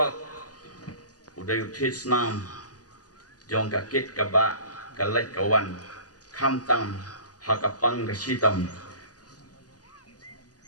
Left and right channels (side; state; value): right; late; 0.67 ms